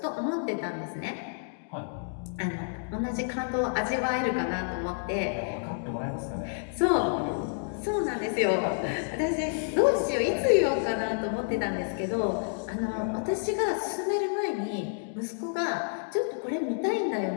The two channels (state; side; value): silent; right; digital silence